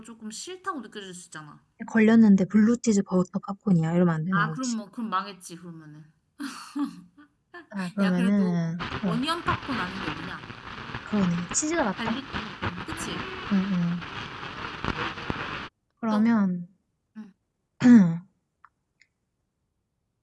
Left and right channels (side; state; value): both; identical; correlation 1.00